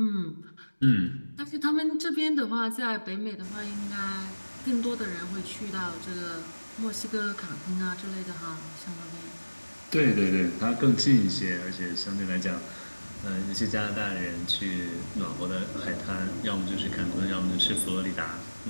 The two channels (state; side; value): inverted; both; correlation -1.00